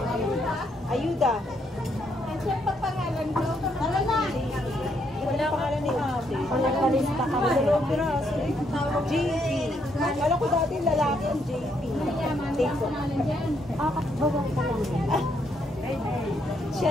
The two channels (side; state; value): both; normal; correlation 0.74